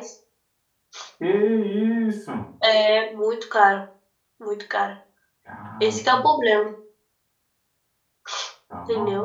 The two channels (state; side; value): identical; both; correlation 1.00